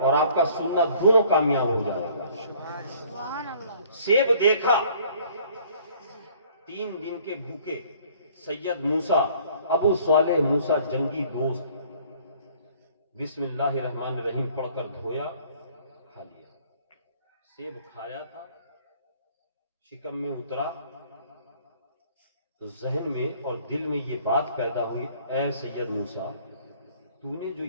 اور آپ کا سننا دونوں کامیاب ہو جائے گا. سیب دیکھا، 3 دن کے بھوکے سید موسیٰ، ابو صالح موسیٰ جنگی دوست، بسم اللہ الرحمن الرحیم پڑھ کر دھویا، کھا لیا. سیب کھایا تھا، شکم میں اترا تو ذہن میں اور دل میں یہ بات پیدا ہوئی، اے سید موسیٰ، تو نے جو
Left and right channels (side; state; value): both; inverted; correlation -0.56